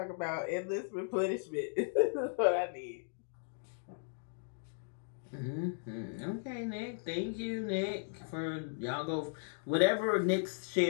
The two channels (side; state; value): right; silent; digital silence